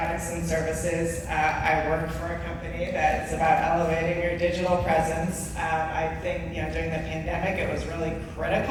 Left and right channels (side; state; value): both; identical; correlation 1.00